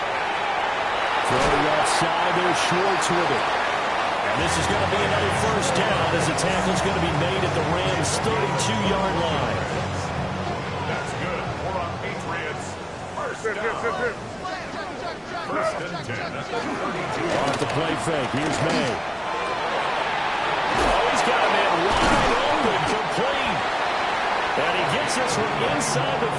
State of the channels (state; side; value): identical; both; correlation 1.00